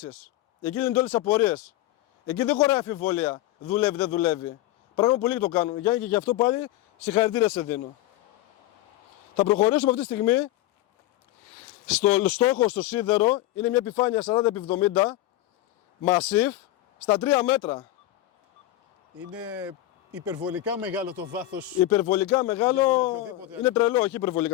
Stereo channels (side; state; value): right; quieter; 15.3 dB